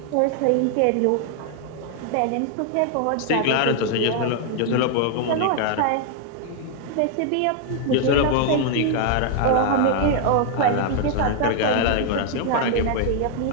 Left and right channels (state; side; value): different; both; correlation 0.00